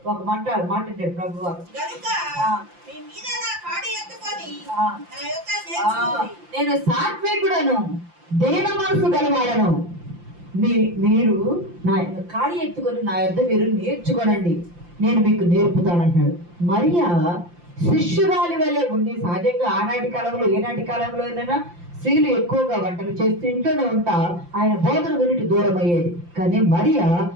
ఒక మాట అంటాడు ప్రభువు, నేను సాత్వికుడను, దేన మనసు గలవాడను, మీరు నా కాడి ఎత్తుకొని నా యొద్ద మీరు నేర్చుకోనండి, నేను మీకు నేర్పుతానంటాడు. మరియా శిష్యురాలి వల్లే ఉండి, సహజంగా ఆనాటి కాలంలో ఏనాటి కాలంలో అయినా స్త్రీలు ఎక్కువగా వంటలు చేస్తూ ఇంట్లోనే ఉంటా ఆయన బోధన వినటి దూరం అయ్యేది. కానీ మరియా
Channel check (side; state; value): left; late; 5.8 ms